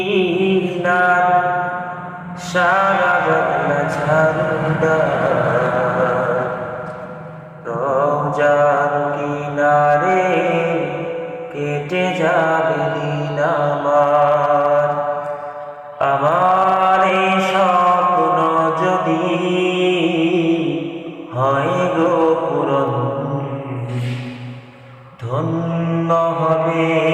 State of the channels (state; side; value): identical; both; correlation 1.00